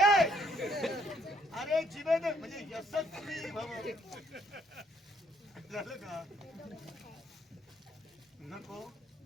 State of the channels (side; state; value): both; normal; correlation 0.67